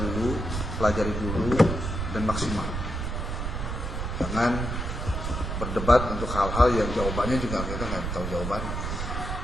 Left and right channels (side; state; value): right; noise; rumble, 3 dB below the sound